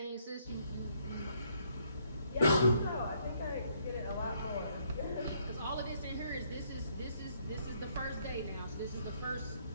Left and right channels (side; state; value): both; inverted; correlation -0.69